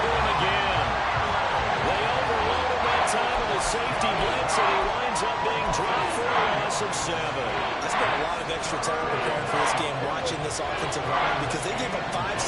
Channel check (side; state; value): both; identical; correlation 1.00